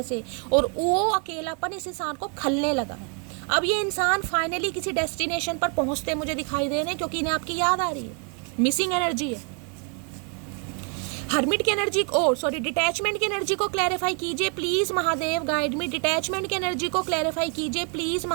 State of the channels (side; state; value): left; quieter; 38.3 dB